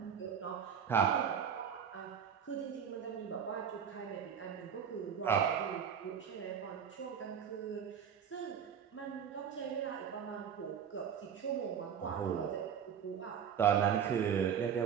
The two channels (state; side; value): quieter; left; 7.9 dB